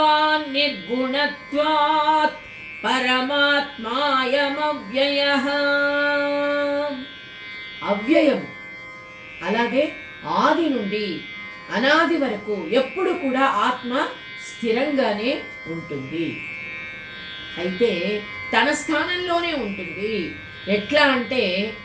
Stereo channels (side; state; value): both; identical; correlation 1.00